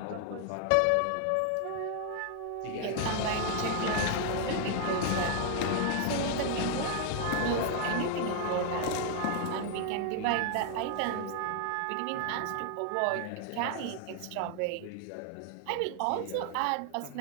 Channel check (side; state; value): both; different; correlation 0.00